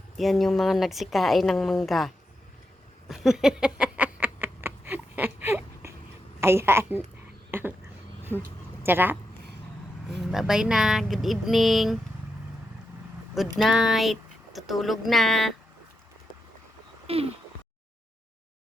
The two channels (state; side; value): normal; both; correlation 0.86